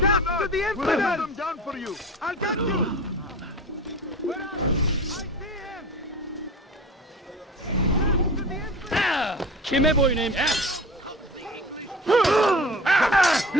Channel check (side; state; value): both; normal; correlation 0.36